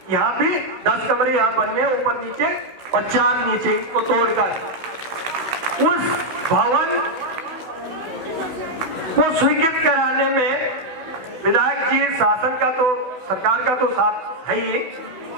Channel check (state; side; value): late; left; 16 ms